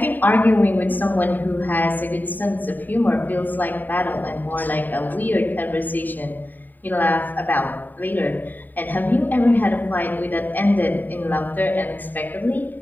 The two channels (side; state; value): right; late; 0.088 ms